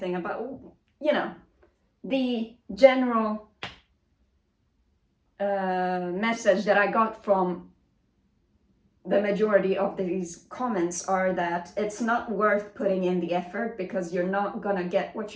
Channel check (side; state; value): both; identical; correlation 1.00